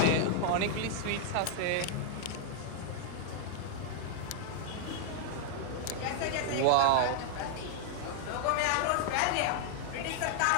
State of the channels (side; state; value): both; different; correlation -0.01